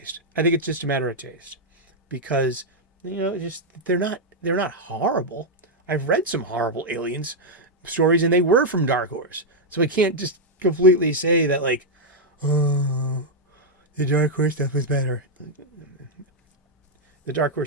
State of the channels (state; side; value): normal; both; correlation -0.02